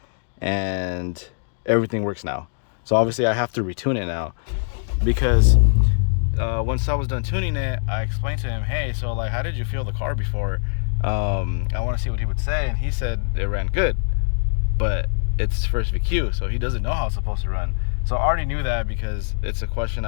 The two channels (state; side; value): silent; right; digital silence